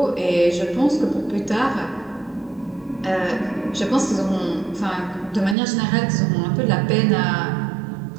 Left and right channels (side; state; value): left; drops out; at 5.6 s